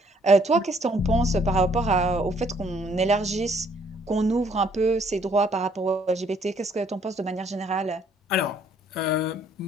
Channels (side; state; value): both; normal; correlation 0.64